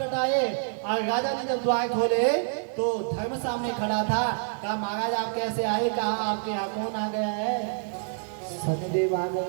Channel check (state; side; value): silent; left; 57 dB below the other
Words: और राजा ने जब द्वार खोले तो धर्म सामने खड़ा था। कहा महाराज आप कैसे आए? कहा आपके यहाँ कौन आ गया है? शनिदेव आ